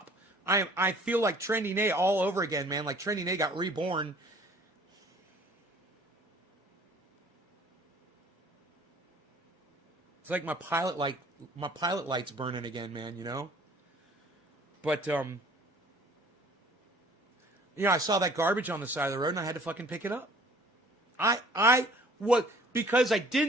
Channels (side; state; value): both; normal; correlation 0.53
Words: I feel like Trendy Nay all over again, man. Like Trendy Nay got reborn. It's like my pilot light's burning again, man, you know? But, I saw that garbage on the side of the road and I had to fucking pick it up. Because I